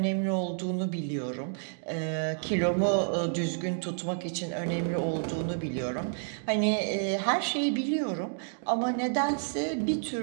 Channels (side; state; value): left; silent; digital silence